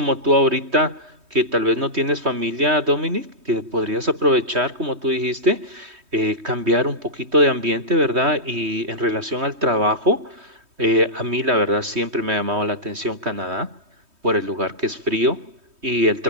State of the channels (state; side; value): late; left; 3.2 ms